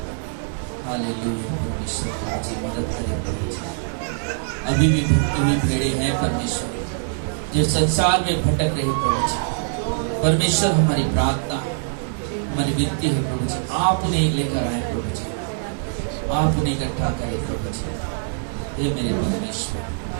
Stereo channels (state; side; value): silent; left; digital silence